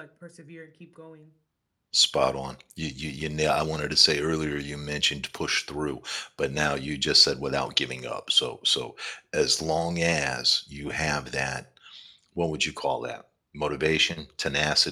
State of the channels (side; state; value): both; identical; correlation 1.00